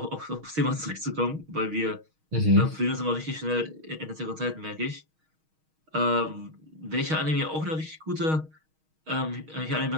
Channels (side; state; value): left; late; 6.4 ms